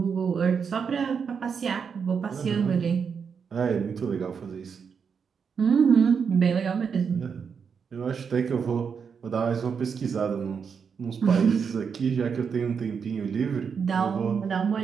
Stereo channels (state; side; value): quieter; left; 6.3 dB